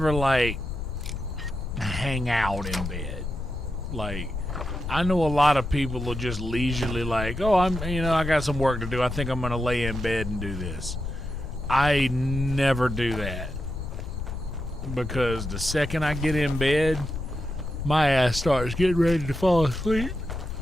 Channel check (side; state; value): left; noise; rumble, 7 dB below the sound